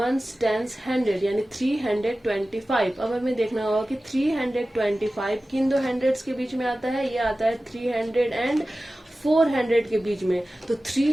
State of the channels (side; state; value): both; normal; correlation 0.96